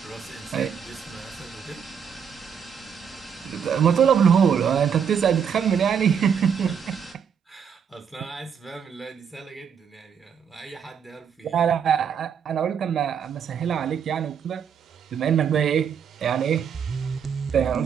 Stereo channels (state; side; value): quieter; left; 7.4 dB